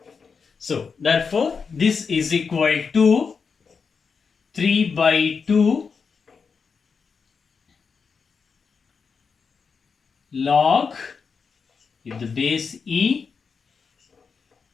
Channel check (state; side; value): quieter; right; 5.5 dB